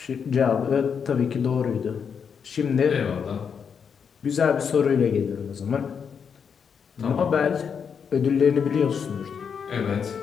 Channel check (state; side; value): quieter; right; 6.8 dB